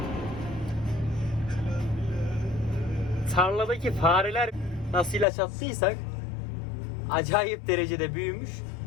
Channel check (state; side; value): drops out; right; at 5.2 s